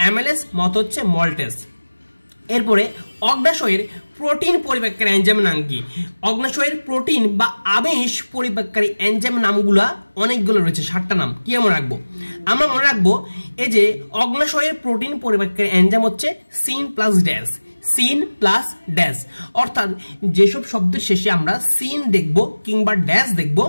মত হচ্ছে মল্টেস। এরপরে অগ্নাশয়ের প্রোটিন পরিপাককারী এনজাইমের নাম কি, অগ্নাশয়ের প্রোটিন বা আমিষ পরিপাককারী এনজাইমের নামগুলা অনেকগুলো রয়েছে, 7টা নাম। কি মনে রাখবো, আমরা মনে রাখবো এই যে অগ্নাশয়ের প্রোটিন পরিপাককারী এনজাইম হচ্ছে সিন প্লাস ড্যাশ, সিন প্লাস ড্যাশ। অর্থাৎ যেসব শব্দের শেষে আমরা সিন দেখবো কিংবা ড্যাশ দেখবো,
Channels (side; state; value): both; inverted; correlation -1.00